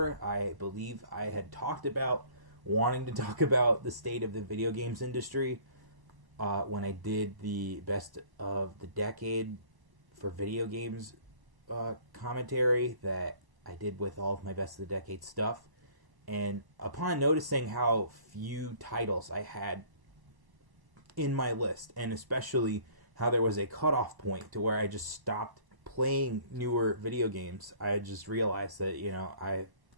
I believe I had talked about wanting to talk about the state of the video games industry when I did the best of the decade for video games commentary that I did with all of my best of the decade stuff. And upon noticing how few titles I had in my list, and especially how there was a cutoff point to where I just stopped playing newer video games, I just realized that, I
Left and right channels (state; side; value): late; left; 1.0 ms